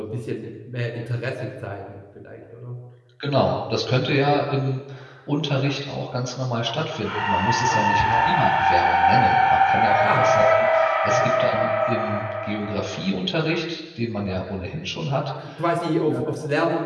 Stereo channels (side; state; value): both; identical; correlation 1.00